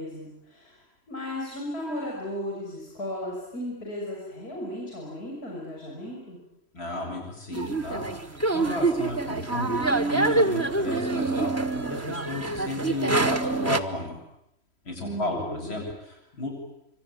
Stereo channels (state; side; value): late; right; 3.1 ms